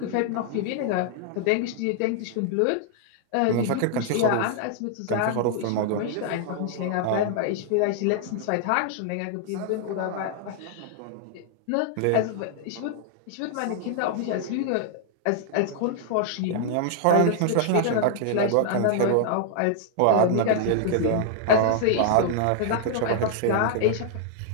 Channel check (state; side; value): different; both; correlation -0.01